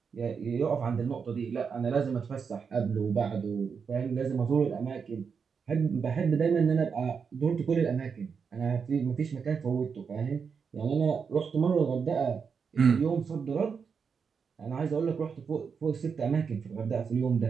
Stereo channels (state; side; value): quieter; left; 6.0 dB